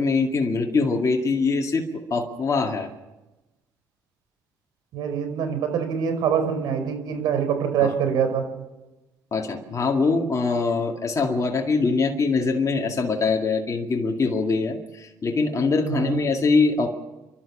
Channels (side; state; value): both; normal; correlation 0.66